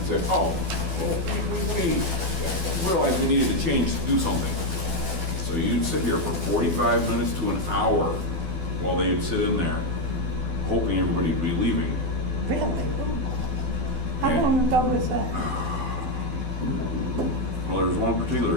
say, oh, well, we realized we needed to change, do something. So you'd sit here for 45 minutes to an hour while they would sit in there, hoping everybody would be leaving. Really? How long ago was that? Well, there was one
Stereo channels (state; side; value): late; left; 12 ms